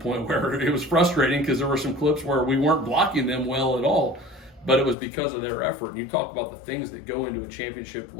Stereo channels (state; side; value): drops out; right; at 5.0 s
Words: where it was frustrating because there were some clips where we weren't blocking them well at all. But it was because of their effort. And you talk about the things that go into a championship